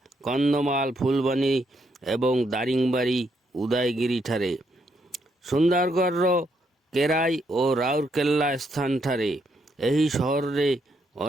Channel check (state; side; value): normal; both; correlation 0.76